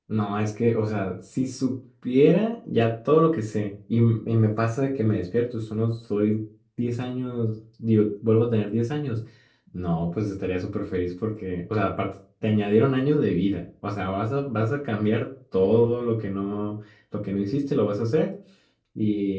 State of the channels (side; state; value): both; identical; correlation 1.00